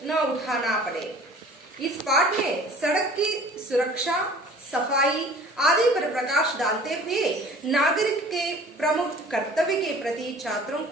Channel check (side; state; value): both; normal; correlation 0.47